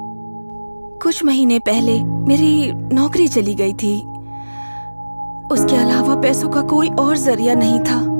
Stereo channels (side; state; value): both; inverted; correlation -1.00